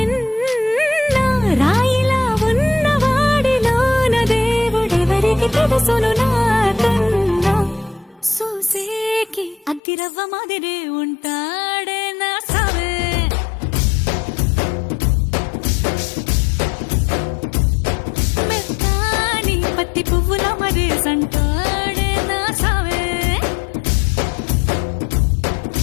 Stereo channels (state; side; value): drops out; right; at 9.8 s